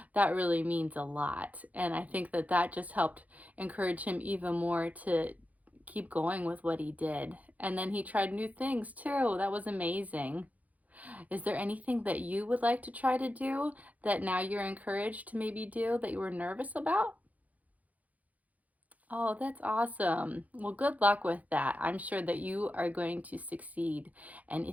that really means a lot. And I think that that just helped encourage him even more to keep going with what he did. And then he tried new things too. That was amazing. Is there anything that you would like to try to do that now you're encouraged to maybe do that you were nervous about? Oh, that's awesome. Well, good luck with that. I'm sure that you are going to succeed. And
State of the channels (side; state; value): left; late; 0.075 ms